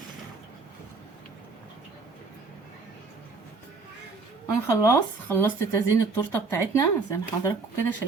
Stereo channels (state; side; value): quieter; left; 4.2 dB